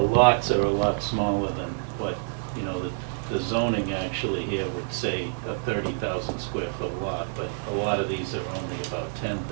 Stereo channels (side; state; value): left; silent; 60 dB below the other